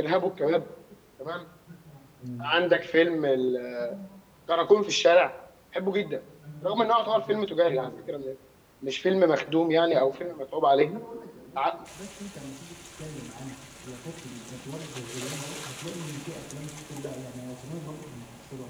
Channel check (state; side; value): identical; both; correlation 1.00